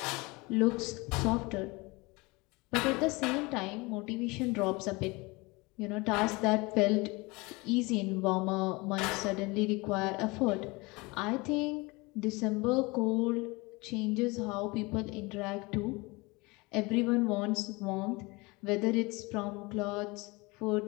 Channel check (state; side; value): quieter; right; 24.9 dB